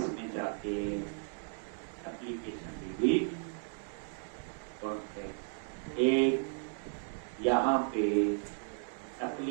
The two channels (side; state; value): left; silent; 55 dB below the other